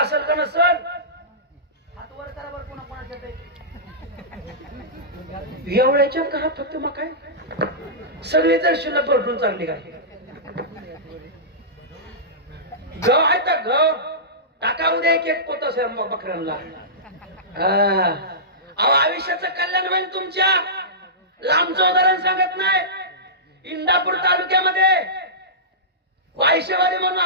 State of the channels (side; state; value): both; normal; correlation -0.18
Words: का नसेल? हात वर करा बरं, कोणा कोणाच्या एवढ्याच्या घरात फक्त मका आहे. सगळी जर शिल्लक भरपूर चांगली काय गव आहे तर गव टाका उद्या एक पोत बकऱ्यांना. आयुष्याचं कल्याण होईल तुमच्या. लांबचं उदाहरण सांगत नाही. इंदापूर तालुक्यामध्ये वायशेवाडी म्हणून